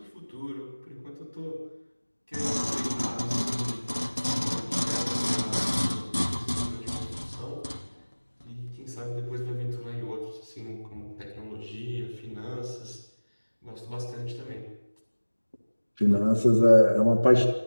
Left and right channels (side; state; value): both; inverted; correlation -1.00